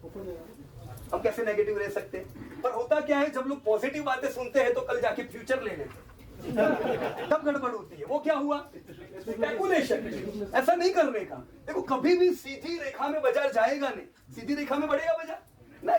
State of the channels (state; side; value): identical; both; correlation 1.00